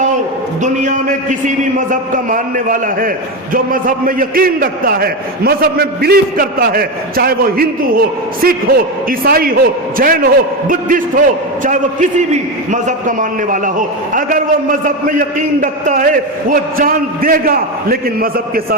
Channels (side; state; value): both; normal; correlation 0.14